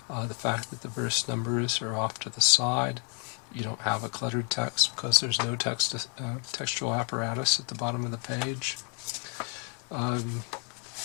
the fact that the verse numbers are off to the side. You don't have a cluttered text because there's no textual apparatus at the bottom of the page.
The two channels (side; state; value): right; quieter; 38.7 dB